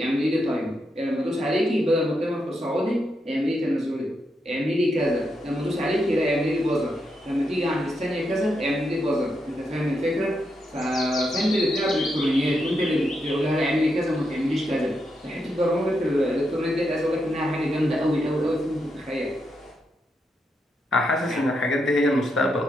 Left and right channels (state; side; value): normal; both; correlation 0.83